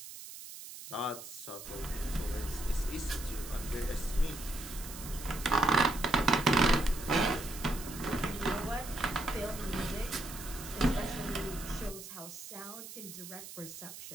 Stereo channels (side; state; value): right; noise; hiss, 12 dB below the sound